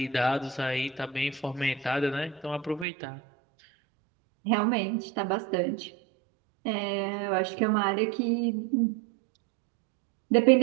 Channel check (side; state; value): left; drops out; at 2.9 s